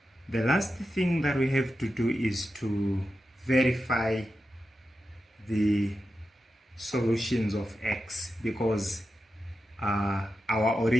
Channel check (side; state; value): both; normal; correlation 0.90